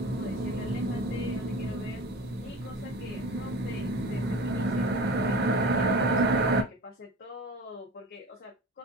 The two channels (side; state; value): both; normal; correlation 0.35